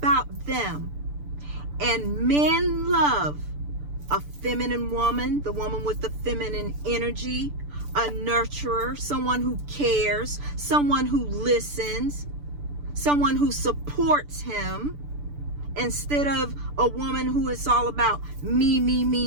them. And men love a feminine woman, the woman with the feminine energy, a nurturer, someone who cares, someone who listens, someone who supports him, instead of a woman who is all about me, me,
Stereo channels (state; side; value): late; left; 6.8 ms